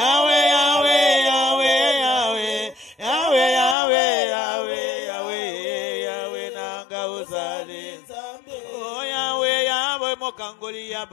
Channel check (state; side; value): drops out; right; at 3.8 s